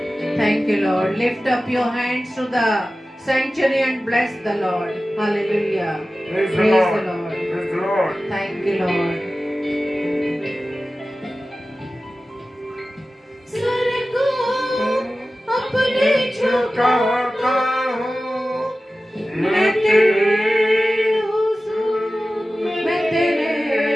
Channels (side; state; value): both; normal; correlation 0.95